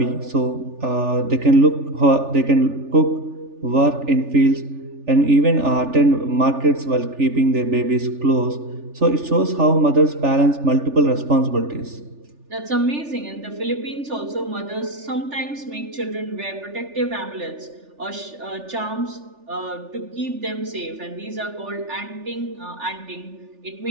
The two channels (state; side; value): late; left; 3.4 ms